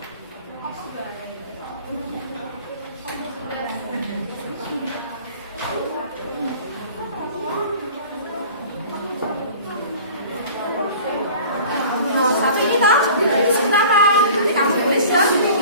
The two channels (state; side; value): inverted; both; correlation -0.44